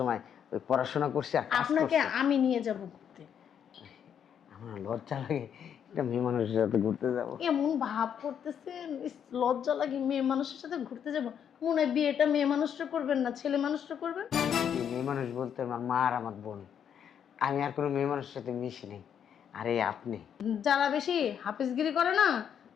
ওই পড়াশোনা করছি আর কাজ আপনাকে করছি। আমি নিয়ে যাব ঘুরতে। আমার লজ্জা লাগে একটা মেয়ে মানুষের সাথে ঘুরতে যাবো। এমন ভাব করতেছেন, ইস, লজ্জা লাগে। মেয়ে মানুষের সাথে ঘুরতে যাব? মনে হয় বিয়েটা মেয়ে মানুষটা করবেন না, ছেলে মানুষটা করবেন। এই মেয়ে মানুষ বলতে আমার মা আর আমার বোন, আমি আর কোনো মেয়ে মানুষের সাথে মিশি নেই। আরে আপনি যারা বেশি হাফিজগিরি করে না,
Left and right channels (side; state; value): right; quieter; 8.5 dB